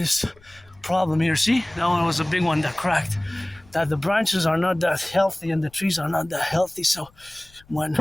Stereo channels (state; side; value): noise; left; rumble, 28 dB below the sound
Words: problem here. See, that one was a big one that cracked. That the branches are not that healthy and the trees are not that healthy. So when